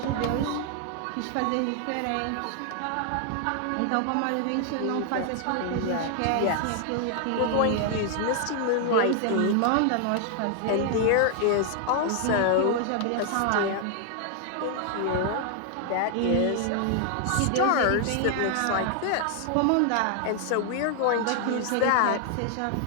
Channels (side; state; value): both; different; correlation 0.00